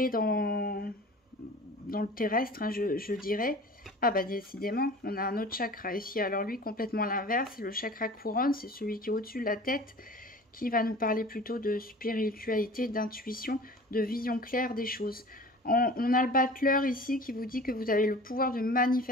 dans le terrestre, hein, je dirais. Ah bah décidément, on a un autre chakra ici. Alors lui, complètement l'inverse, c'est le chakra couronne, c'est celui qui est au-dessus de la tête, qui va nous parler plutôt de spiritualité, d'intuition, de vision claire des choses. On a le battleur ici qui vous dit que vous avez le pouvoir de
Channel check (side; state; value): both; normal; correlation 0.41